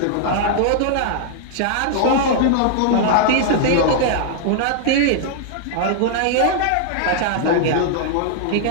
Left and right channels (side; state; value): both; different; correlation -0.01